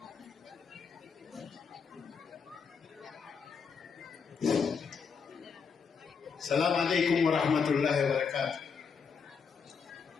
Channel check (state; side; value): quieter; right; 5.9 dB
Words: السلام عليكم ورحمة الله وبركاته.